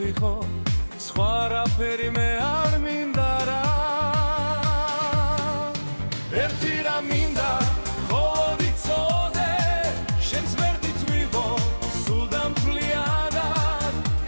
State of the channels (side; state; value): both; inverted; correlation -1.00